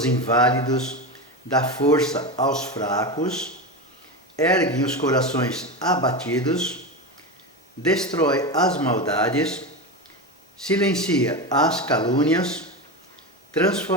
inválidos, dá força aos fracos, ergue os corações abatidos, destrói as maldades, silencia as calúnias,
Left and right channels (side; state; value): both; normal; correlation 0.19